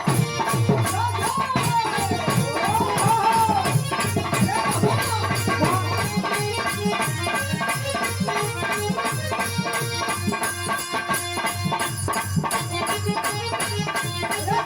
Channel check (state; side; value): identical; both; correlation 1.00